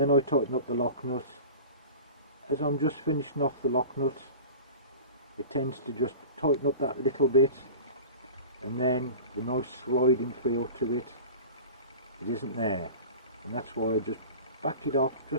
I tighten up the lock nut, as I'm just finishing off the lock nut, it tends to just tighten up that little bit, and then the nice sliding feel to it isn't there. And that's why I just back it off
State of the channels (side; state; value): both; inverted; correlation -0.36